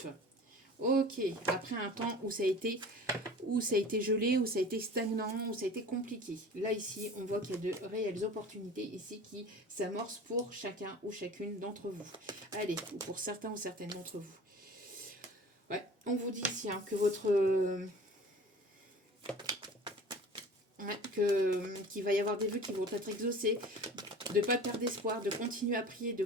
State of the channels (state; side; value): normal; both; correlation 0.41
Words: Ok, après un temps où ça a été gelé, où ça a été stagnant, où ça a été compliqué. Là, ici, on voit qu'il y a de réelles opportunités ici qui s'amorcent pour chacun ou chacune d'entre vous. Allez, ou pour certains ou certaines d'entre vous. Ouais, on vous dit ici que votre... qu'il va y avoir des vœux qui vont être exaucés, de ne pas perdre d'espoir, de continuer à prier, de